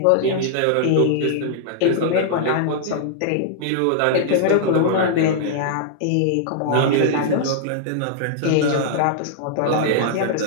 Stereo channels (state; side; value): different; both; correlation -0.01